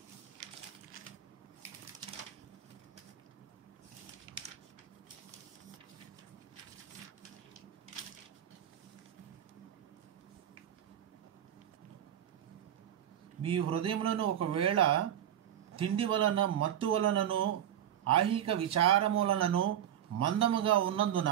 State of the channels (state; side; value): quieter; left; 10.6 dB